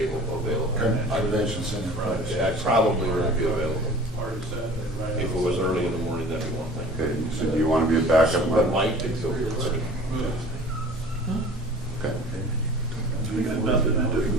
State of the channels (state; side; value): normal; both; correlation 0.45